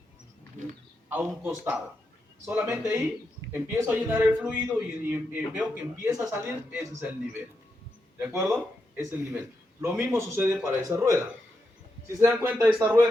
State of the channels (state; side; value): normal; both; correlation 0.85